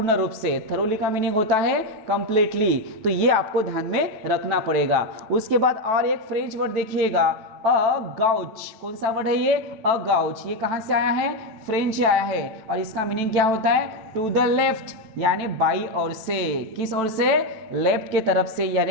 रूप से। थरोली का मीनिंग होता है कंप्लीटली। तो ये आपको ध्यान में रखना पड़ेगा। उसके बाद और एक फ्रेंच वर्ड देखिएगा, अ गाउच। कौन सा वर्ड है ये? अ गाउच। ये कहां से आया है? फ्रेंच से आया है और इसका मीनिंग क्या होता है? टू द लेफ्ट, यानी बाई ओर से। किस ओर से? लेफ्ट के तरफ से,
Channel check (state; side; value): late; left; 9.1 ms